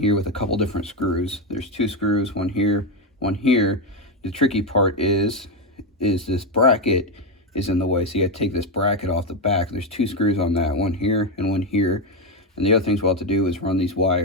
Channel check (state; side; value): normal; both; correlation 0.08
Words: with a couple different screws. There's two screws, one here, one here. The tricky part is this bracket is in the way, so you got to take this bracket off the back. There's two screws on that, one here and one here. And the other things we'll have to do is run these